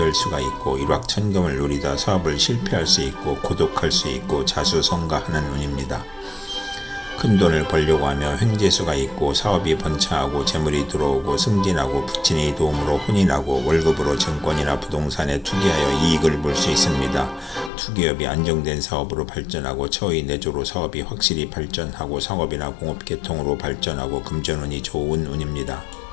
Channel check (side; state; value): right; drops out; at 17.7 s